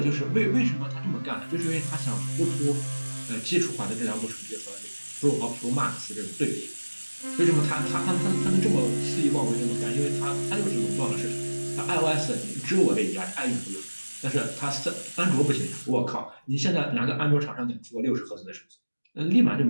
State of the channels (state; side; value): inverted; both; correlation -1.00